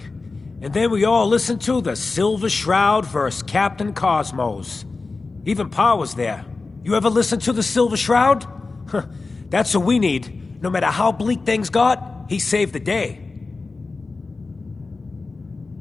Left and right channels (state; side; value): quieter; right; 3.8 dB